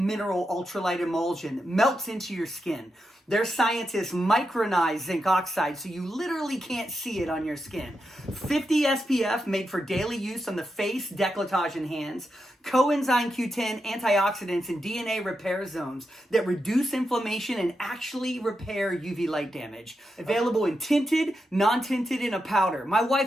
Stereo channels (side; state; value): both; normal; correlation 0.86